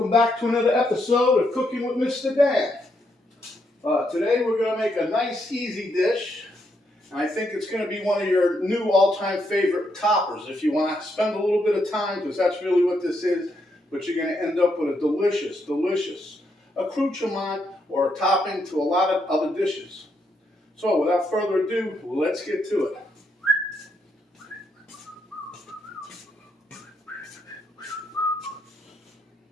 back to another episode of Cooking with Mr. Dan. Today we're going to make a nice, easy dish. I think it's going to be one of your new all-time favorite toppers if you want to spend a little bit of time, because that's really what this is. But you're going to end up with a delicious, delicious accoutrement or a topping to a lot of other dishes. So without further ado, let's get to it.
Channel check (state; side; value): normal; both; correlation 0.78